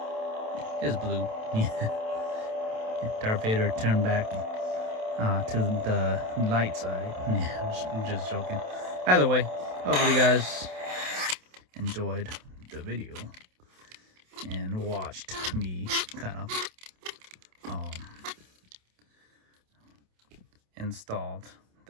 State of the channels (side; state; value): left; late; 27 ms